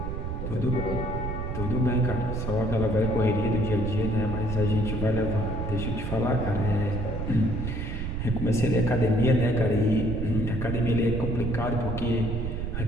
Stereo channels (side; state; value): right; noise; rumble, 4 dB below the sound